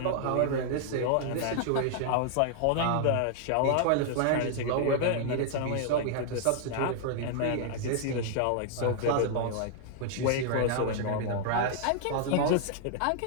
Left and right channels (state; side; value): different; both; correlation -0.01